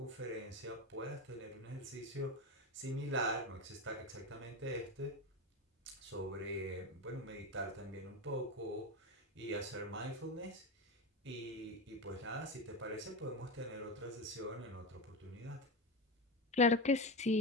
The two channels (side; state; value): both; normal; correlation 0.18